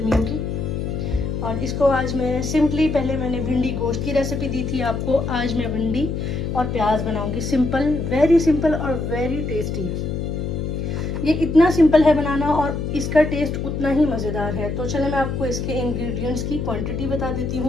की। और इसको आज मैं सिंपली, पहले मैंने भिंडी गोश्त की रेसिपी दी थी आपको, आज मैं भिंडी और प्याज बनाऊंगी। सिंपल, वेरी सिंपल और वेरी टेस्टी। ये इतना सिंपल है बनाना और इसका टेस्ट उतना ही मज़ेदार है। तो चले मैं आपको इसके इंग्रेडिएंट्स की क्वांटिटी बता देती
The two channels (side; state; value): left; noise; hum, 3 dB below the sound